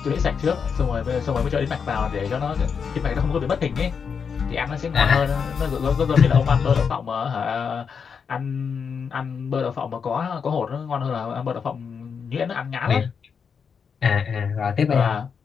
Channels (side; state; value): right; quieter; 6.3 dB